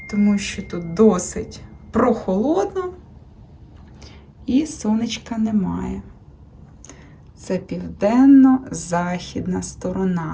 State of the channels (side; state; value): both; identical; correlation 1.00